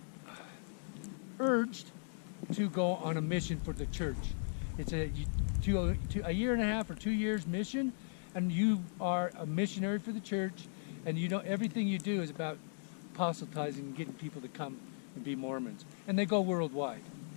urged to go on a mission for the church. It's a year and a half or 2 years mission, and you are a missionary for the church, and you know everything you do is about proselytizing and getting people to come and be Mormons, and they go worldwide.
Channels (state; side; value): silent; right; digital silence